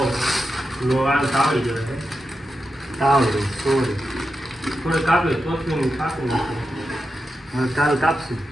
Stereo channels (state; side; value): normal; both; correlation 0.89